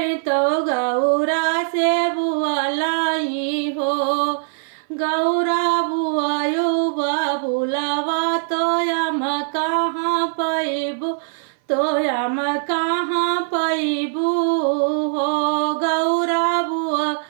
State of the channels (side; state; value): left; silent; 59 dB below the other